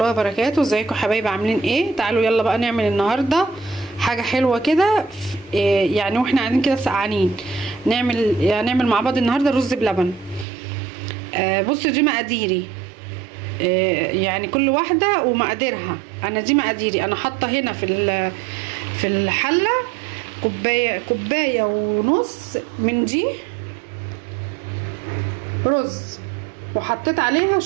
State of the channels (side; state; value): left; drops out; at 10.5 s